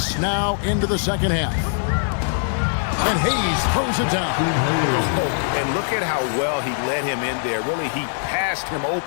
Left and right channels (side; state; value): right; silent; digital silence